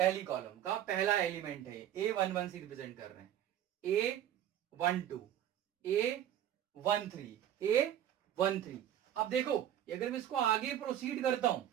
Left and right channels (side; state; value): left; quieter; 11.1 dB